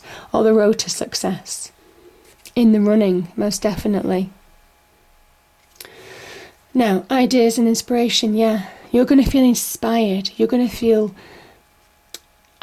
or the road to success. In the running, most definitely. Now, ideas and inspiration, yeah. You're going to feel inspired. You're going to feel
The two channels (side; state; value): both; identical; correlation 1.00